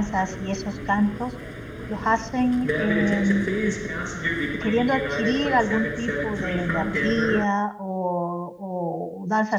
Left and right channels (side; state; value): both; identical; correlation 1.00